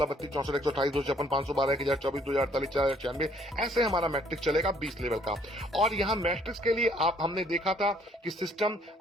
32, 64, 128, 256, 512, 1024, 2048, 4096, ऐसे हमारा मैट्रिक चलेगा 20 लेवल का। और यहाँ मैट्रिक्स के लिए हमने देखा था कि सिस्टम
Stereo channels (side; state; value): both; normal; correlation 0.63